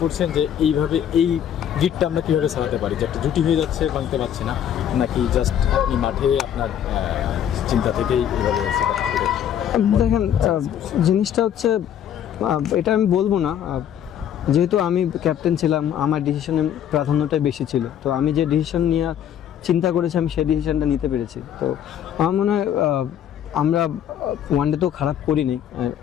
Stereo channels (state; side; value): quieter; right; 9.8 dB